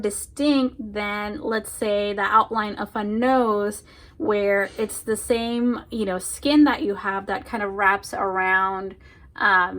than, let's say, the outline of a nose, where it's the same, you know, skin that you have that kind of wraps around,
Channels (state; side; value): identical; both; correlation 1.00